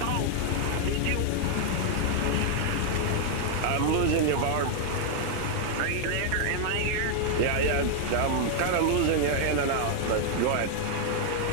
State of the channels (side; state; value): both; different; correlation 0.00